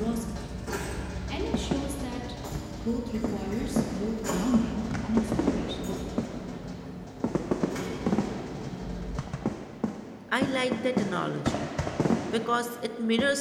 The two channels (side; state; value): both; identical; correlation 1.00